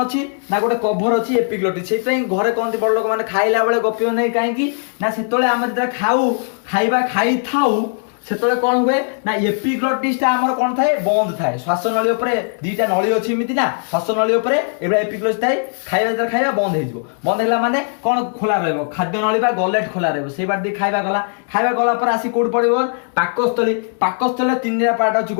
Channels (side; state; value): right; silent; 58 dB below the other